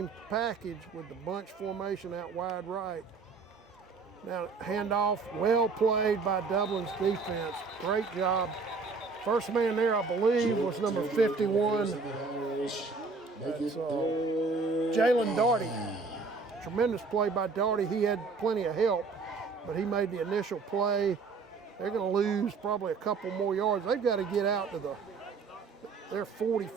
package with the bunch formation out wide right. Now, handoff, well played by Dublin's defense. Great job. First man there, I believe, was number 51. That's Jalen Daugherty. Tremendous play by Daugherty. He had plenty of help, but he made the initial play. They're going to lose probably a couple more yards. They've got to get out to they're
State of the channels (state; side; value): quieter; left; 4.5 dB